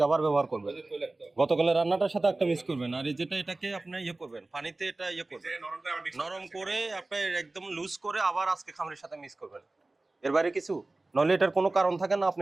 আবার ব্যবহার করবেন। গতকালের রান্নাটার সাথে একটা মিক্স করবেন। আর এই যেটা এটাকে আপনি ইয়ে করবেন, পানিতে এটা ইয়ে করবেন, নরম করে আপনি একদম লুজ করে আবার আজকে খামিরের সাথে মিক্স করবেন। এর বাইরে কিছু নলে এটার কোনো কারণ থাকে না। আপনি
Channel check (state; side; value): quieter; left; 3.0 dB